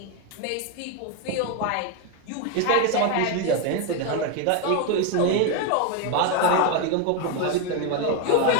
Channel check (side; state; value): both; different; correlation 0.02